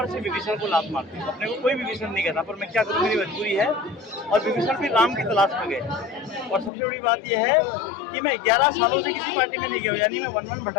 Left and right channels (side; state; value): right; drops out; at 6.7 s